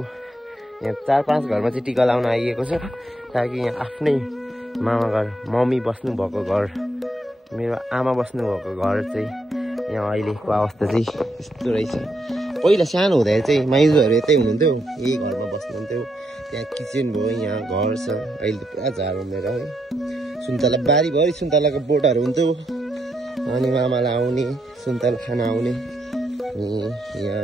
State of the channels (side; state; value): both; normal; correlation 0.79